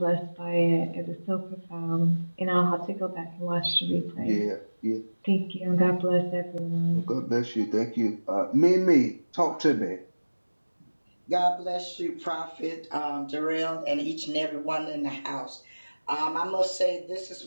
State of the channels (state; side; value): inverted; both; correlation -1.00